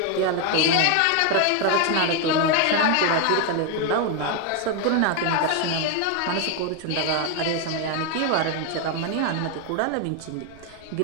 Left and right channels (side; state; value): both; different; correlation 0.01